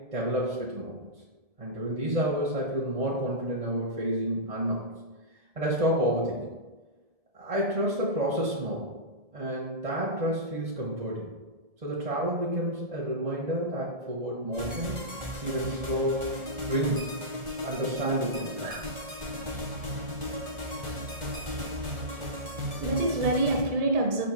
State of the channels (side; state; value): left; late; 1.7 ms